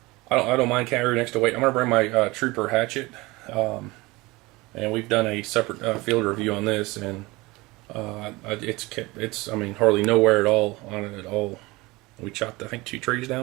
I don't mind carrying extra weight. I'm going to bring my Trooper hatchet, and we've done a separate field review on this, and it's hardly no wear at all on it at all. We chopped I think 2 trees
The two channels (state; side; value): quieter; left; 22.2 dB